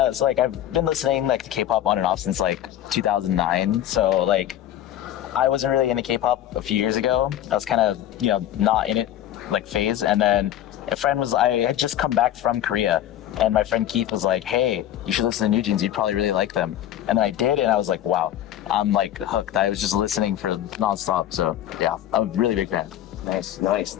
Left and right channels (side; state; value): right; quieter; 11.9 dB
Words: it's like I've been listening like to K-pop on and off since like 2009. So like, I wasn't really into K-pop a few years ago. I was kind of, you know, not in it like phase. And then I had just come back from Korea, and my friend Keith was like, "Hey, you should listen to New Jeans. You'd probably really like them." And then I did, and I was like, "Wow, I'm like hooked." I was just listening for nonstop. So yeah, I'm a really big fan. Nice.